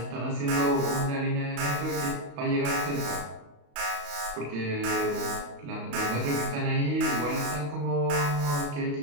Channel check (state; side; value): late; left; 35 ms